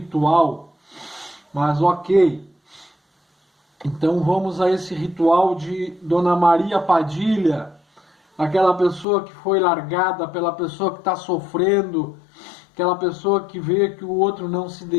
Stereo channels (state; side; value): drops out; right; at 9.1 s